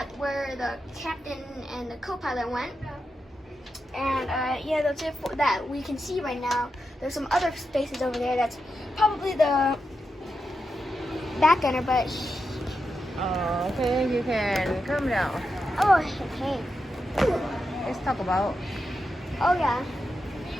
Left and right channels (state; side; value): normal; both; correlation 0.88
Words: where the captain and the co-pilot went, and yeah, that's it for that we can see right now. There's some other spaces over there. That's probably the back gunner, but Oh, okay, you can come down. oh, okay. Let's talk about. Oh yeah.